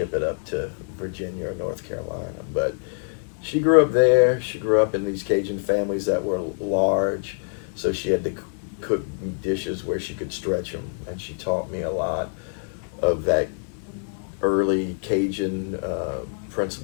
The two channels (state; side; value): silent; right; 62 dB below the other